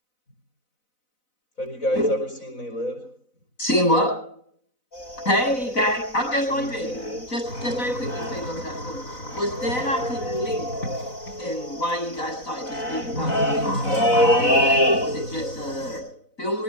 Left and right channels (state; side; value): late; right; 4.0 ms